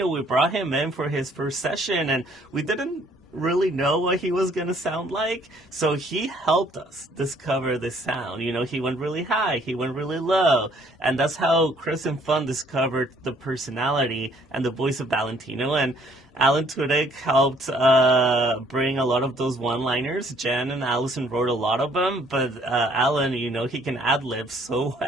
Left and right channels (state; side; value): normal; both; correlation 0.61